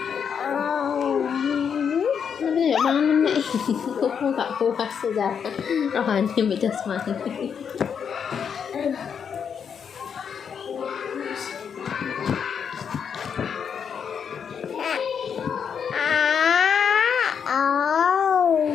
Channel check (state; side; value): quieter; right; 7.2 dB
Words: nanti ya mangan nek kok gak puas saja. Rohani ambek jasmani.